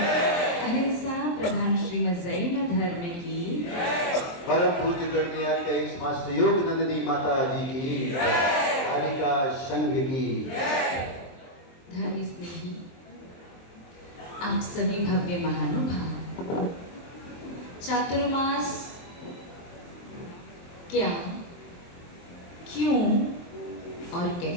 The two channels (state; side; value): late; right; 23 ms